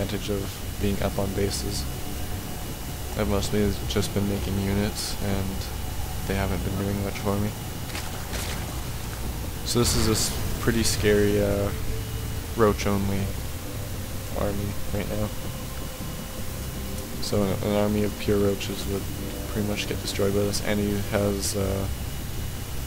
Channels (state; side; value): identical; both; correlation 1.00